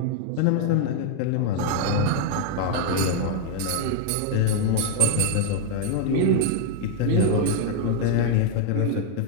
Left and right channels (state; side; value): different; both; correlation 0.00